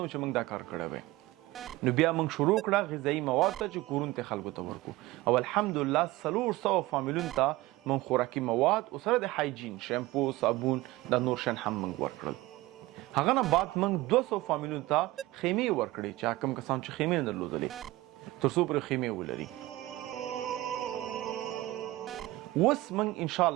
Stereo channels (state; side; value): quieter; left; 18.6 dB